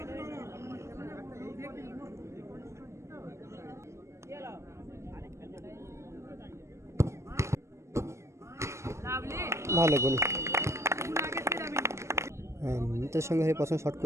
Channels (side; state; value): left; late; 0.13 ms